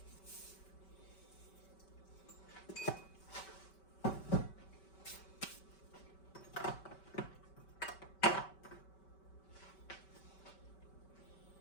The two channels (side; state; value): right; late; 5.2 ms